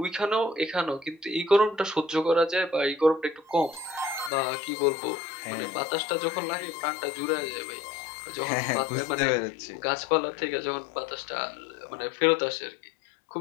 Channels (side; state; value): right; drops out; at 4.3 s